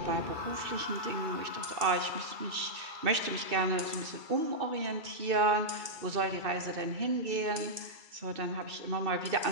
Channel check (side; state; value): left; late; 2.6 ms